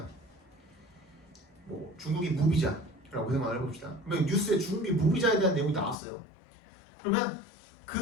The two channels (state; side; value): drops out; right; at 6.0 s